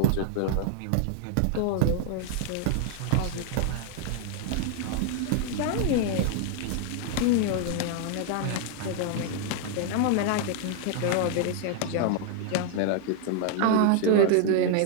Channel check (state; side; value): different; both; correlation 0.00